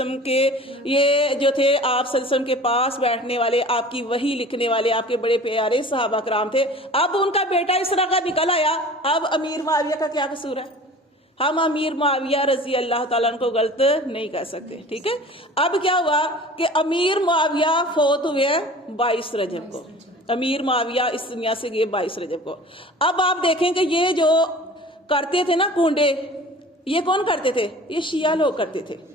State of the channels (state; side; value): normal; both; correlation 0.43